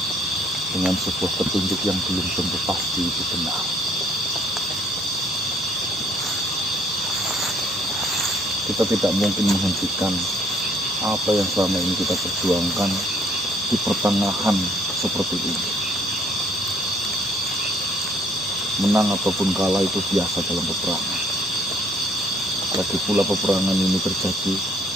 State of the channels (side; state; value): both; normal; correlation 0.63